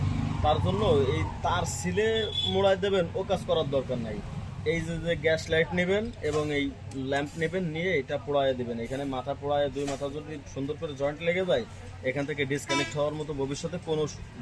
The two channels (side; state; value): both; identical; correlation 1.00